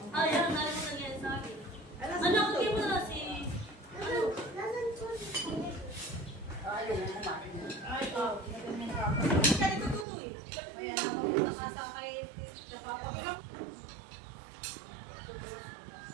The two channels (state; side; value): drops out; left; at 10.1 s